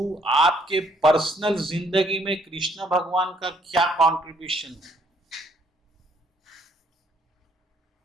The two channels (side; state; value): both; normal; correlation 0.67